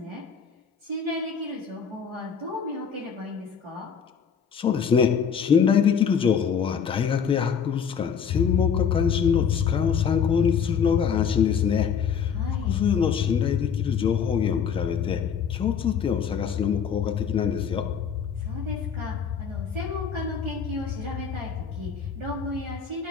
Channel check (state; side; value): quieter; right; 7.0 dB